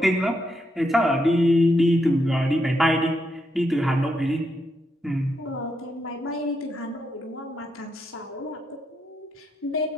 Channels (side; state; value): both; normal; correlation 0.80